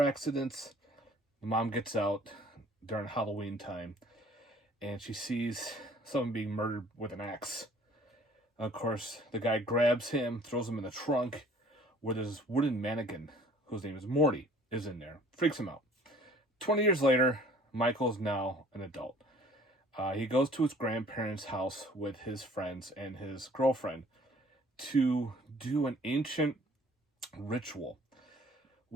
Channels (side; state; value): both; normal; correlation 0.53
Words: accidents. The mom gets out during Halloween time, and she sees someone being murdered with an axe. Of course, the guy grabs him, throws him in the trunk, where this wooden mannequin, whose name is Morty, is in there. Freaks him out. 20 years later, Michael is now an adult. He goes to his grandparents' house with his friends and his girlfriend to do an ancient ritual